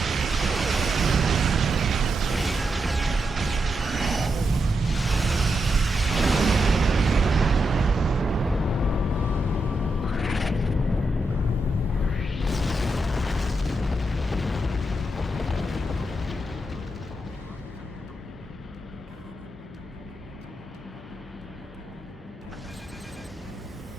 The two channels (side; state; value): both; normal; correlation 0.85